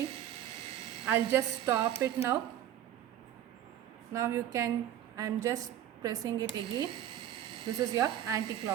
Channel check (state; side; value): quieter; left; 11.4 dB